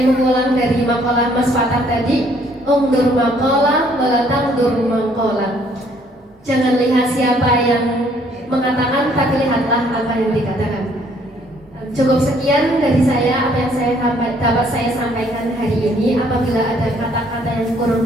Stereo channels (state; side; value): normal; both; correlation 0.63